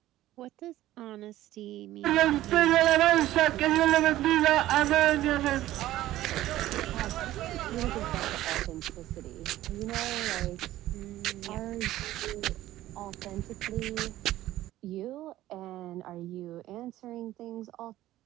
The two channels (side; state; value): left; quieter; 14.8 dB